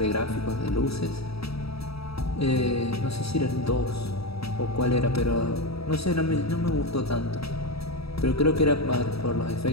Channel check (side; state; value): right; late; 0.77 ms